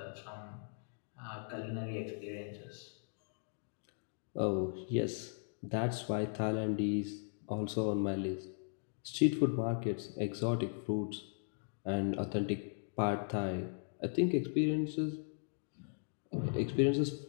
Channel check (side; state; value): right; silent; digital silence